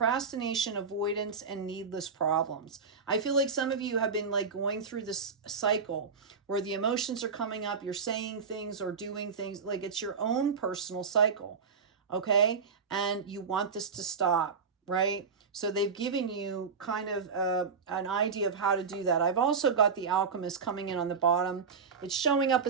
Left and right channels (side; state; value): left; quieter; 5.5 dB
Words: avoidance, and needless problems. I feel like some of you have been like going through this cycle where the emotions are coming up, you're saying things or doing things, like it's your own personal cycle, okay? And you want this to stop, right? So they've given you kind of an idea of how to do that. I've also got the alchemist coming in on the bottom. It's showing up